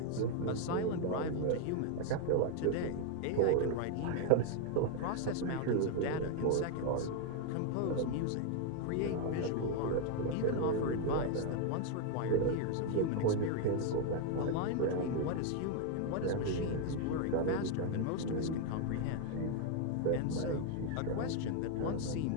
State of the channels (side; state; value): both; different; correlation 0.00